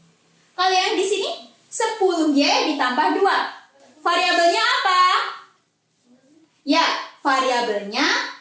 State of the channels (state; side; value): identical; both; correlation 1.00